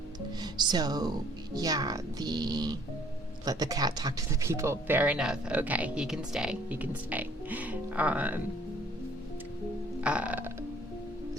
so yeah, let the cat talk to the people. Fair enough. Okay, he can stay.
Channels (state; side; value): normal; both; correlation 0.60